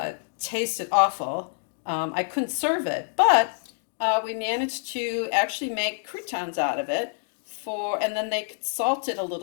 tasted awful. I couldn't serve it, but we managed to actually make croutons out of it and then they salt it a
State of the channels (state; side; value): silent; right; digital silence